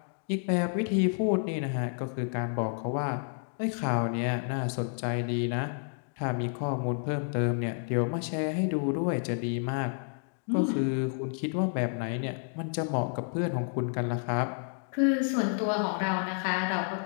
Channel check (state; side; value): silent; right; 58 dB below the other